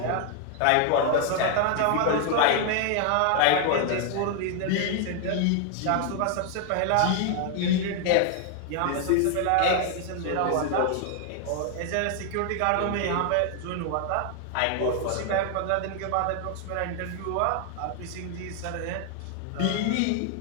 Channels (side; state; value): both; different; correlation 0.00